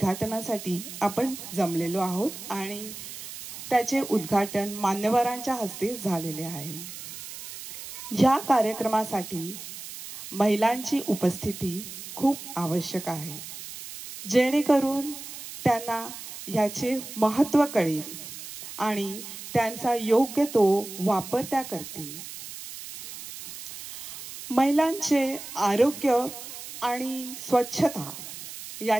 आपण जमलेलो आहोत आणि त्याचे उद्घाटन मान्यवरांच्या हस्ते झालेले आहे. या कार्यक्रमासाठी महिलांची उपस्थिती खूप आवश्यक आहे, जेणेकरून त्यांना याचे महत्त्व कळेल आणि त्यांचा योग्य तो वापर त्या करतील. महिलांचे आरोग्य आणि स्वच्छता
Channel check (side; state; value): right; noise; hiss, 11 dB below the sound